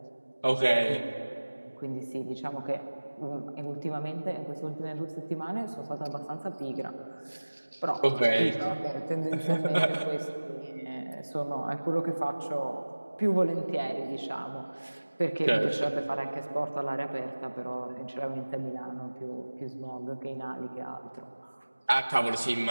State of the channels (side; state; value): both; inverted; correlation -1.00